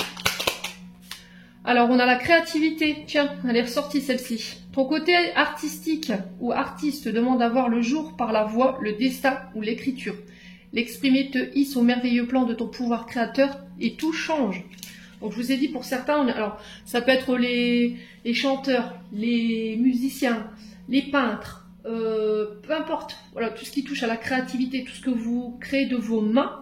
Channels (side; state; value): both; identical; correlation 1.00